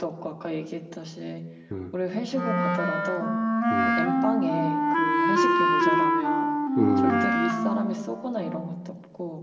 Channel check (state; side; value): identical; both; correlation 1.00